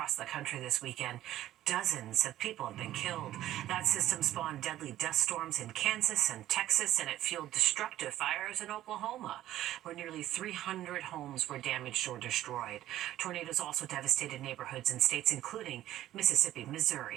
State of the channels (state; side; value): quieter; left; 13.6 dB